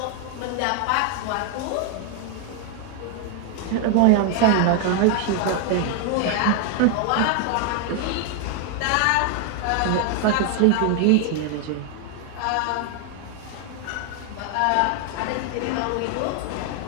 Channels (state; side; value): different; both; correlation 0.00